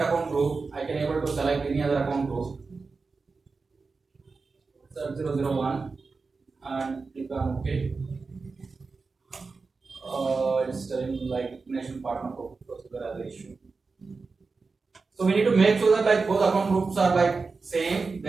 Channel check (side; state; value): left; quieter; 4.3 dB